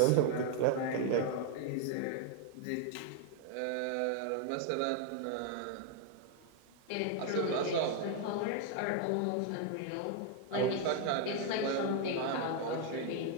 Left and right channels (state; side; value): different; both; correlation 0.01